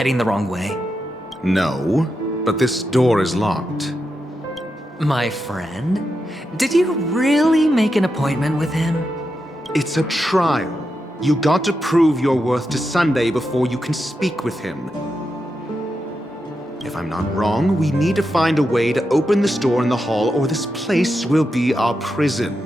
the wrong way? No, but this door is locked. My friend? Did you really make an appointment with him? It's a trial. You got to prove your worth to Sunday before you can speak with him. If I'm not wrong, we need to find a way to open this door in the hall, or this place will be our prison.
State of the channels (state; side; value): normal; both; correlation 0.87